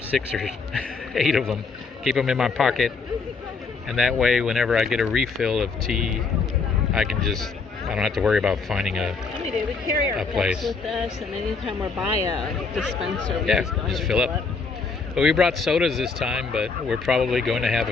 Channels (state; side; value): quieter; right; 4.6 dB